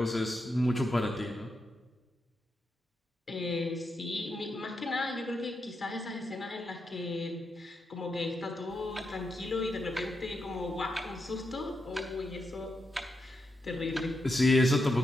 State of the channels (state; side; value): normal; both; correlation 0.84